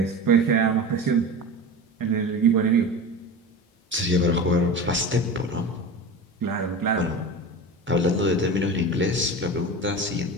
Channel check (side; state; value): both; normal; correlation 0.30